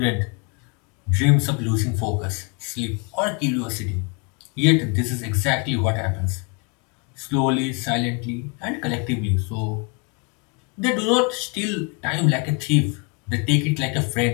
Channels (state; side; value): quieter; right; 33.9 dB